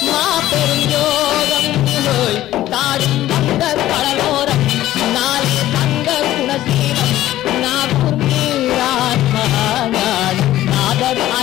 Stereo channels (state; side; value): quieter; right; 14.3 dB